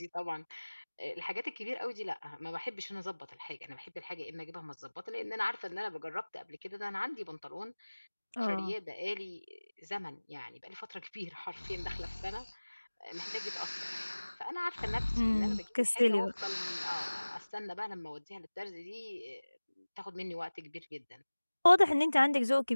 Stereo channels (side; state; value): both; inverted; correlation -1.00